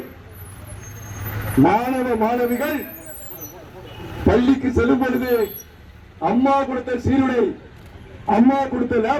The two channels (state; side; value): identical; both; correlation 1.00